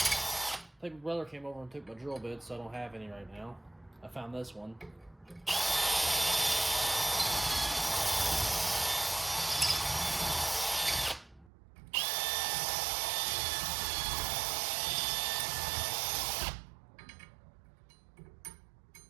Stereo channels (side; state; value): left; drops out; at 11.5 s